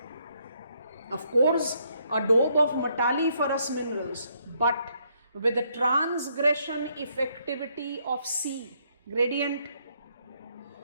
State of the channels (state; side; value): inverted; both; correlation -0.72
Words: Of course, adobe of metalliferous minerals, but with the transgression effectivity of C. Gradient.